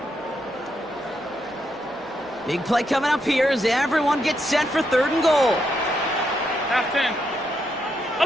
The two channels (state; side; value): noise; right; hum, 29 dB below the sound